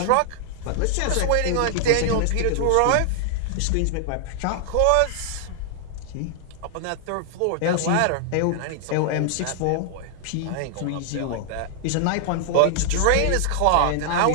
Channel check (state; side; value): different; both; correlation -0.01